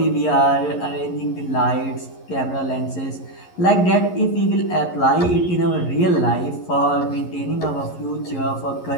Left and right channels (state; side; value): late; right; 11 ms